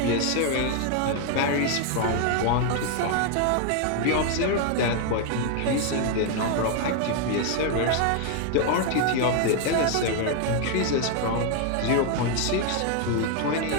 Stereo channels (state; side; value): different; both; correlation 0.00